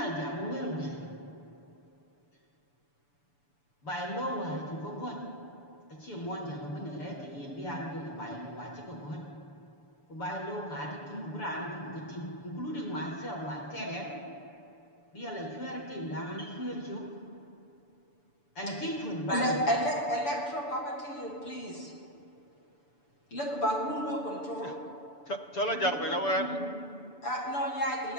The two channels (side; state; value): right; late; 6.9 ms